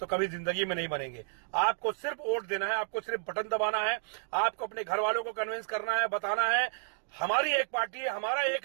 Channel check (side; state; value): left; silent; digital silence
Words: कभी जिंदगी में नहीं बनेंगे। आपको सिर्फ वोट देना है, आपको सिर्फ बटन दबाना है, आपको अपने घर वालों को कन्विंस करना है, बताना है हमारी एक पार्टी है, हमारा